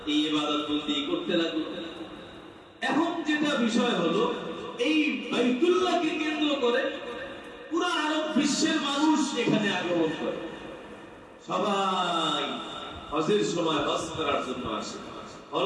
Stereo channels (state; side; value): identical; both; correlation 1.00